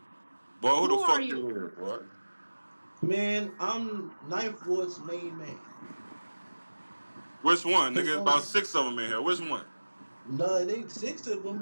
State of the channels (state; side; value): inverted; both; correlation -1.00